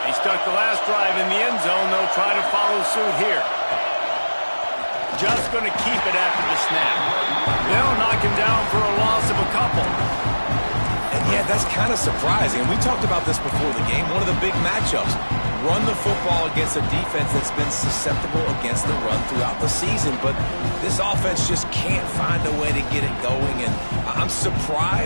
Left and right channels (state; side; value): inverted; both; correlation -1.00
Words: He stuck the last drive in the end zone. They'll try to follow suit here. Just going to keep it after the snap. They'll knock him down for a loss of a couple. And Yeah, that's kind of surprising. And we talked about this before the game. One of the big matchups. Run the football against a defense that's been susceptible against the run throughout the season. But this offense just can't find a way to get it going. And I'm